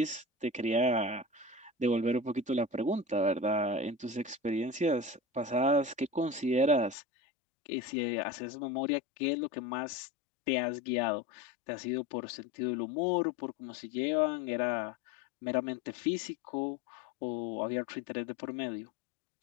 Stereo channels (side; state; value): right; drops out; at 7.0 s